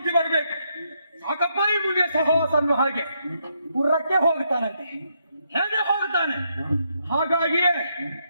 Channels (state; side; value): inverted; both; correlation -0.78